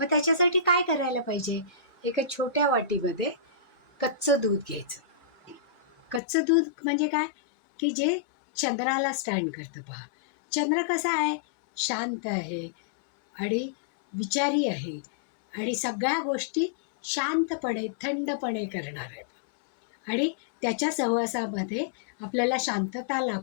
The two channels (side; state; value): right; drops out; at 6.2 s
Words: त्याच्यासाठी काय करायला पाहिजे? एका छोट्या वाटीमध्ये कच्चं दूध घ्यायचं. कच्चं दूध म्हणजे काय? की जे चंद्राला स्टँड करतं पहा. चंद्र कसा आहे? शांत आहे आणि विचारी आहे आणि सगळ्या गोष्टी शांतपणे थंडपणे करणार आहे पहा. आणि त्याच्या सहवासामध्ये आपल्याला शांतता